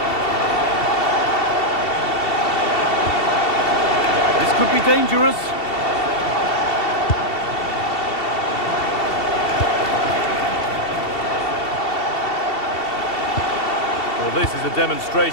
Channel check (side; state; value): right; late; 2.7 ms